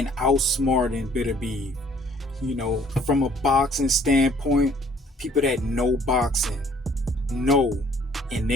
outsmarting Beterbiev. From a boxing standpoint, people that know boxing know in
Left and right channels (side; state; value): both; normal; correlation 0.59